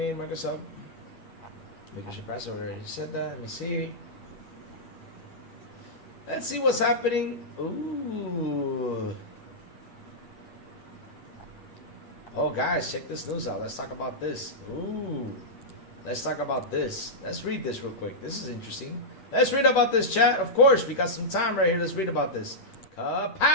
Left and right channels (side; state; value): right; late; 8.5 ms